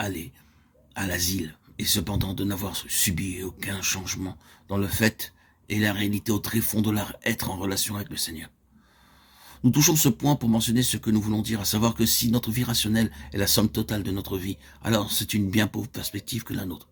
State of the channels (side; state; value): both; identical; correlation 1.00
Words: à l'asile et cependant de n'avoir subi aucun changement dans le fait et la réalité au tréfonds de leur être en relation avec le Seigneur. Nous touchons ce point pour mentionner ce que nous voulons dire, à savoir que si notre vie rationnelle est la somme totale de notre vie, alors c'est une bien pauvre perspective que la nôtre.